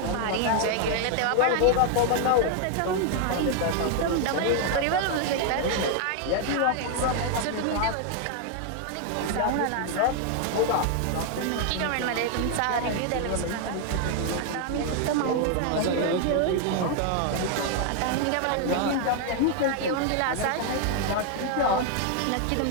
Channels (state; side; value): different; both; correlation 0.00